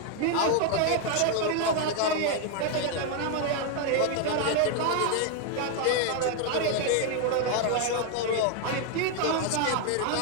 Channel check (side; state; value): both; different; correlation 0.01